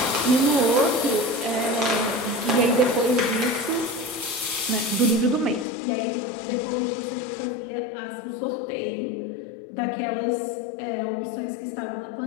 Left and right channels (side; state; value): right; drops out; at 5.7 s